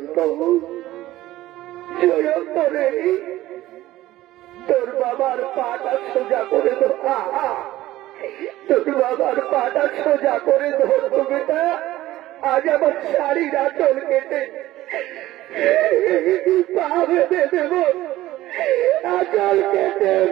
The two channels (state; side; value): quieter; left; 15.7 dB